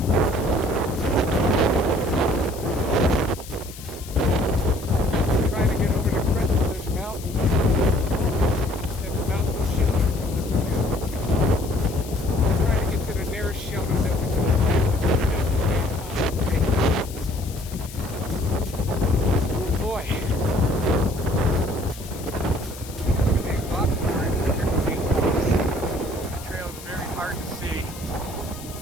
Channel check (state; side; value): noise; left; hiss, 16 dB below the sound